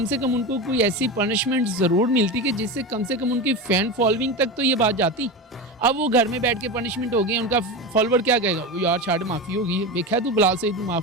से कम उनको कोई ऐसी पनिशमेंट ज़रूर मिलती कि जिससे कम से कम उनकी फ़ैन फॉलोइंग तक तो ये बात जाती। अब वो घर में बैठ के पनिशमेंट हो गई, उनका फॉलोवर क्या कहेगा, वो यार छाड़ माफ़ी होगी, देखा तू बिलाल से तू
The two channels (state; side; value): normal; both; correlation 0.22